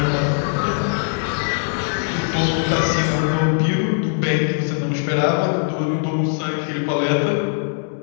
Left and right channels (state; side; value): silent; right; 65 dB below the other